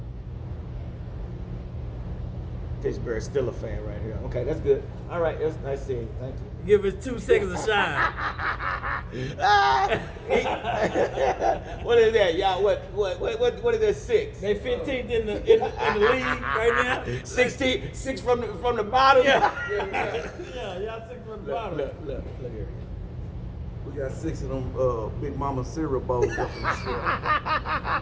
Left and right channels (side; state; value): both; identical; correlation 1.00